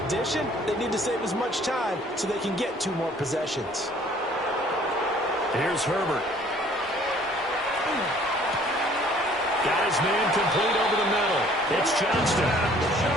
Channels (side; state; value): both; normal; correlation 0.56